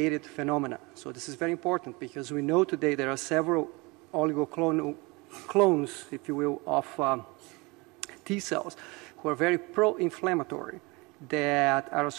phenomena. So this is very important because we know today there are several oligoclonal clones, if you will, of T cells who are very pro-inflammatory that are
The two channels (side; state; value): left; quieter; 26.1 dB